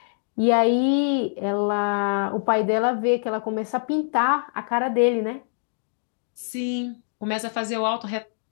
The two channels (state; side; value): silent; right; digital silence